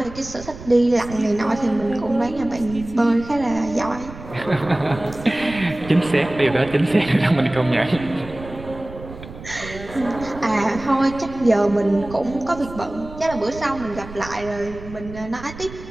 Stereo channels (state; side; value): noise; right; rumble, 14 dB below the sound